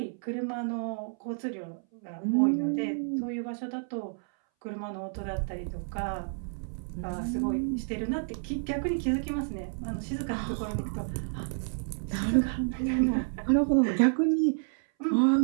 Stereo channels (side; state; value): left; silent; 58 dB below the other